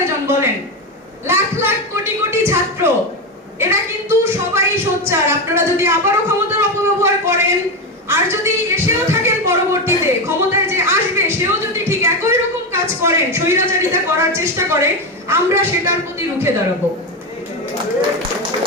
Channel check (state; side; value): normal; both; correlation 0.14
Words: বলেন? লাখ লাখ কোটি কোটি ছাত্র, এরা কিন্তু সবাই সোচ্চার। আপনারা যদি আবারও ক্ষমতার অপব্যবহার করেন আর যদি এসেও থাকেন পরবর্তীতে ক্ষমতায় যে আসবে সেও যদি ঠিক একই রকম কাজ করেন, স্বৈরাচারিতা করার চেষ্টা করে, আমরা সেটার প্রতি রুখে দাঁড়াবো।